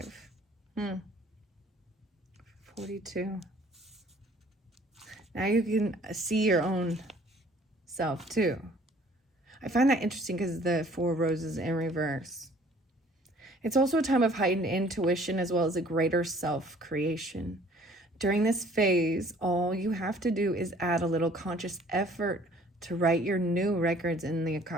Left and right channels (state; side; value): normal; both; correlation 0.55